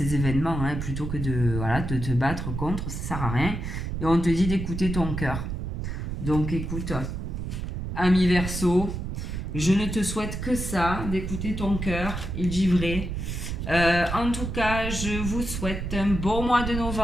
événements hein, plutôt que de te battre contre, ça sert à rien. Et on te dit d'écouter ton cœur. Donc écoute, ami Verseau, je ne te souhaite que ça, d'écouter ton cœur, il dit vrai. En tout cas, je vous souhaite un bon mois de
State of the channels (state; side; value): noise; right; rumble, 4 dB below the sound